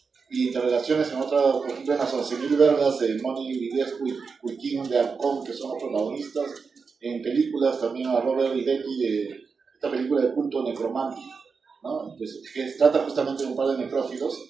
y interrelaciones en otra, por ejemplo, en las 11.000 vergas de Moni Villescu y King de Alcón, que son los protagonistas. En películas también a Robert y Becky de esta película de culto Necromantic, ¿no? Que trata justamente de un par de necrófilos.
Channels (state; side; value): quieter; left; 5.1 dB